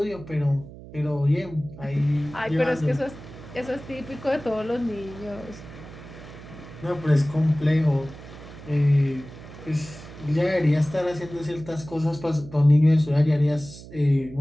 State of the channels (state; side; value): noise; right; hum, 16 dB below the sound